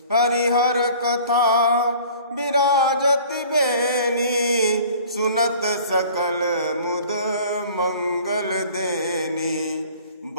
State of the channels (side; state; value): both; inverted; correlation -0.48